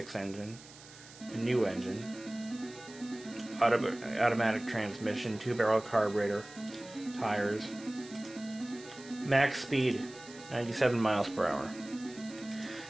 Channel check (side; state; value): right; noise; hiss, 19 dB below the sound